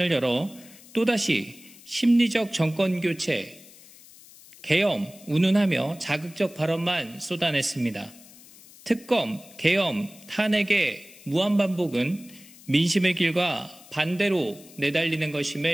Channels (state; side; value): noise; left; hiss, 22 dB below the sound